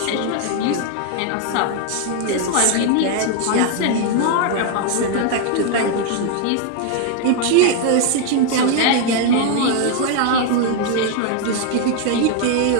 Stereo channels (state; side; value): different; both; correlation 0.00